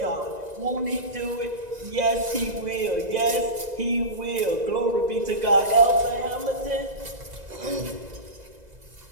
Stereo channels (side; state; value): left; late; 2.0 ms